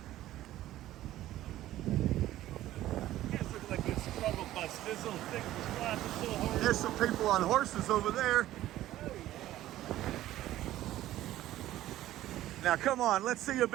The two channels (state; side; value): quieter; left; 14.3 dB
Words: Guys look like a struggle bus. This little thing was flashing so hard. There's some people on horses over there. Now come on, let's see a